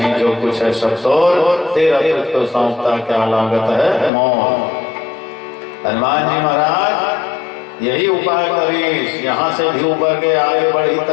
जो कुछ है सब तोर, तेरा तुझको सौंपता क्या लागत है मौत। हनुमान जी महाराज यही उपाय करी, यहाँ से भी उबर के आगे बढ़ी तो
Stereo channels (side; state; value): right; drops out; at 4.1 s